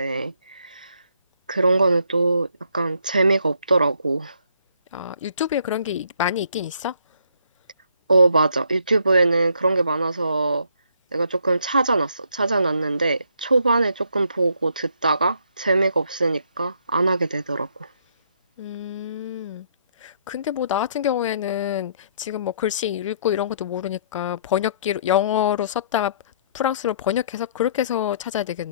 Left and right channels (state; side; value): inverted; both; correlation -0.67